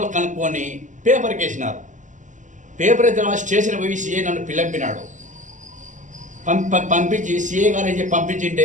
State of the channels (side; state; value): left; late; 0.36 ms